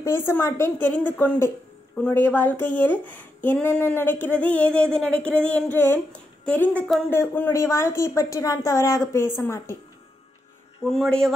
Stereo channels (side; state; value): both; normal; correlation 0.84